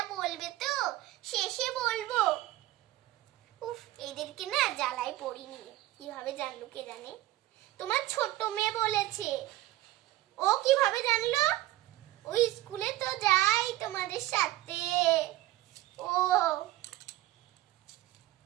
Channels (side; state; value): left; quieter; 16.2 dB